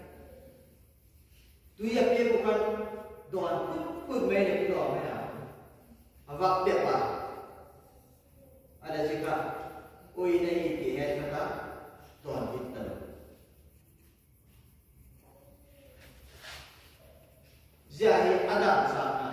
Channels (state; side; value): identical; both; correlation 1.00